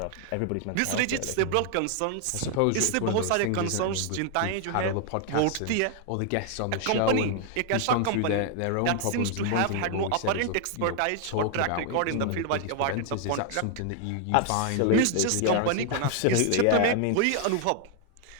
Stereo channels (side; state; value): both; different; correlation 0.00